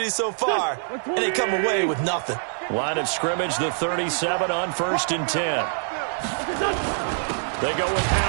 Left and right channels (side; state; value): left; silent; digital silence